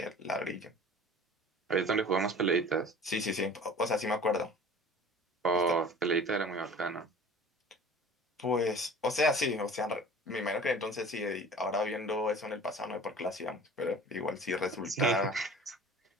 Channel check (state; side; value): normal; both; correlation 0.43